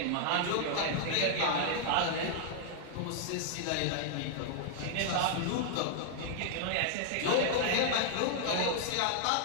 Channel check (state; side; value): different; both; correlation 0.00